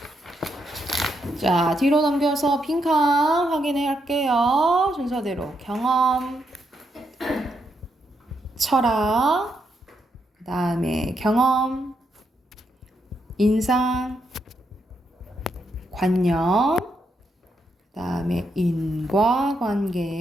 자, 뒤로 넘겨서 빈칸 확인해 할게요. 순서대로 경험, 철학, 그 다음에 경험, 인상, 관념, 그 다음에 인과관계,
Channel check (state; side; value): normal; both; correlation 0.80